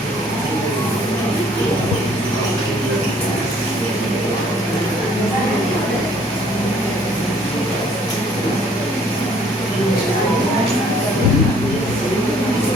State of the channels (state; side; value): normal; both; correlation 0.59